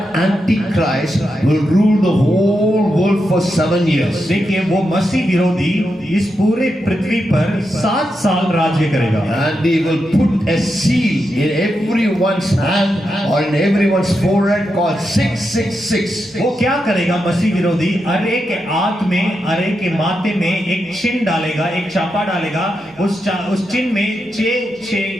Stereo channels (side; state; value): both; normal; correlation 0.86